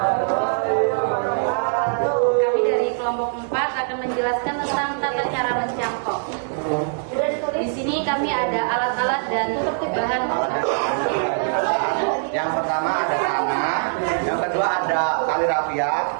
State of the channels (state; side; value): silent; left; digital silence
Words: Kami dari kelompok 4 akan menjelaskan tentang tata cara mencangkok. Di sini kami ada alat-alat dan bahan. Yang pertama ada tanah, yang kedua ada tali rafia,